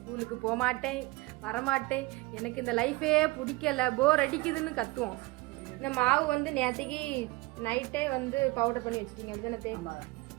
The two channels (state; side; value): quieter; left; 22.4 dB